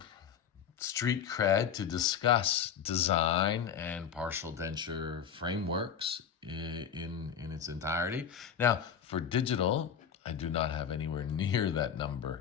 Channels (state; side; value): quieter; right; 8.0 dB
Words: street cred to discuss design and partial denture frameworks in its entirety. Now, for digital, I do not have anywhere near that